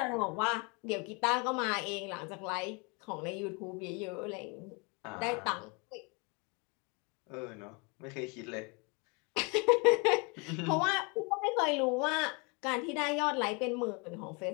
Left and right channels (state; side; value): quieter; right; 31.1 dB